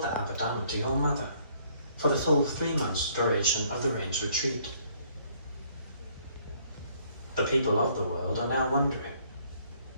the Abhidhamma to your mother for the full 3 months duration of the range retreat. The people of the world are now wondering,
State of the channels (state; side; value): inverted; both; correlation -0.64